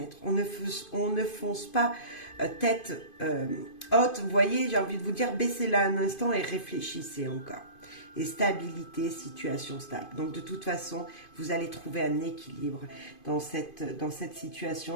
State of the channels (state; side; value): late; right; 2.5 ms